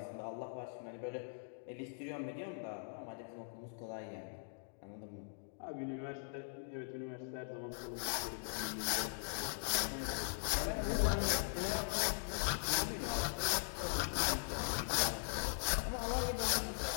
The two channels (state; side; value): silent; right; digital silence